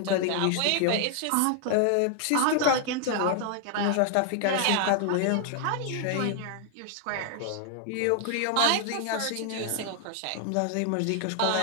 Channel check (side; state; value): both; different; correlation 0.00